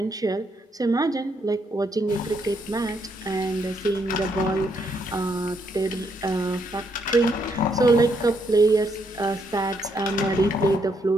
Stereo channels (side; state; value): both; normal; correlation 0.75